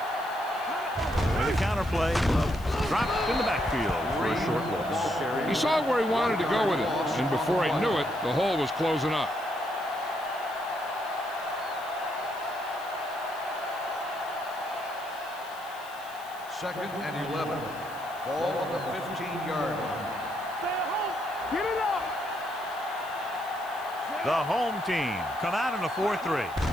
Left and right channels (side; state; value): left; noise; hiss, 20 dB below the sound